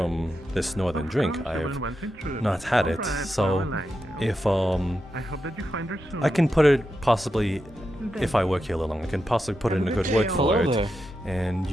this northern drink. I've not had it, so if I can put it possibly, if I work here a little long, I can possibly put in a good word for it, and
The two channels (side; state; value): both; normal; correlation 0.87